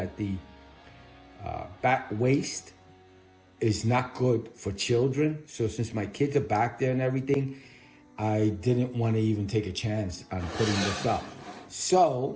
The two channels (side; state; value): both; identical; correlation 1.00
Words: the bat waste is not good for children. So since my kids are back there and everything, I didn't want to even take a chance on putting this up.